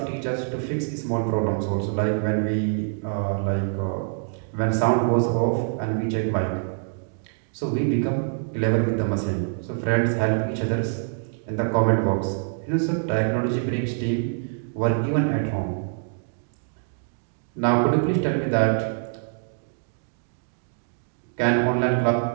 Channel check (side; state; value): left; silent; digital silence